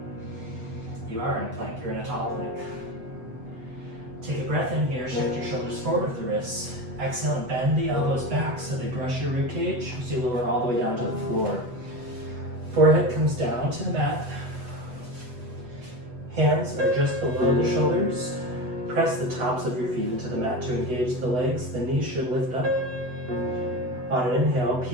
You are in a plank, you're in a tall plank. Take a breath in here, shift your shoulders forward with the wrists. Exhale and bend the elbows back so they brush your rib cage as you lower all the way down to the floor. Forehead comes down to the mat. Hands are just below the shoulders. Press the tops of your feet into the mat to engage the legs. The knees should lift up. On an inhale,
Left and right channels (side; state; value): left; late; 8.0 ms